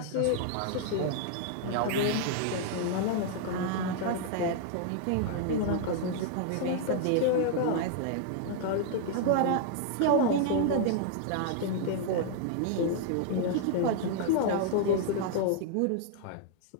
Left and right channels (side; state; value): both; different; correlation 0.00